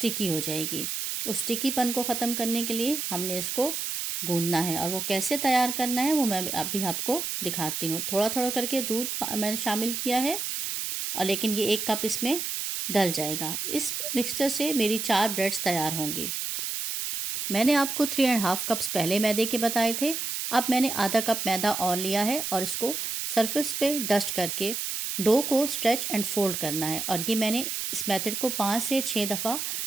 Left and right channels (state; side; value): noise; right; hiss, 3 dB below the sound